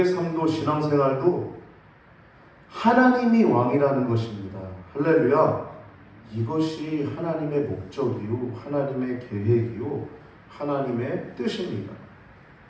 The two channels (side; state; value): both; identical; correlation 1.00